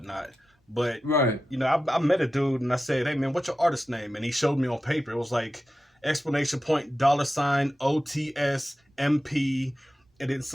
But, you know, I met a dude and I said, hey, man, what's your artist name? And he showed me on paper. It was like $! OTS MP, and then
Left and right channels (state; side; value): normal; both; correlation 0.92